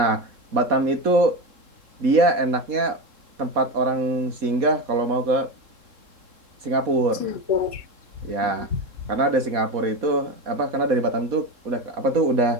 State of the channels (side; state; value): left; late; 3.7 ms